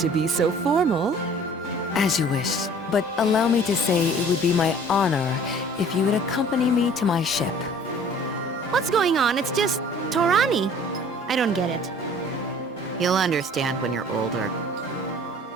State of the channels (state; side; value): normal; both; correlation 0.50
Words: be so formal. As you wish, but allow me to say it would be my honor if you would accompany me to my ship. What's going on? It's just Torani. I don't get it. You'll understand when you're older.